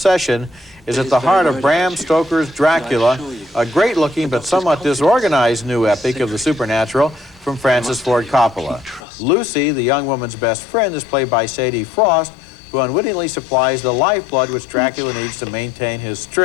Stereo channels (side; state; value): right; drops out; at 9.0 s